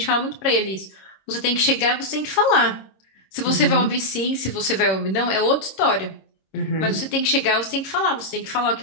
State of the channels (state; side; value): late; right; 26 ms